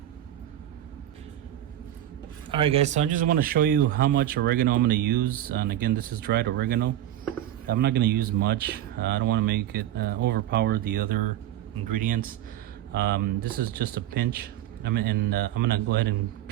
Alright guys, so I just want to show you how much oregano I'm going to use. And again, this is dried oregano. I'm not going to use much. I don't want to make it overpower the other ingredients. This is just a pinch. I'm gonna go ahead and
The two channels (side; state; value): left; quieter; 12.5 dB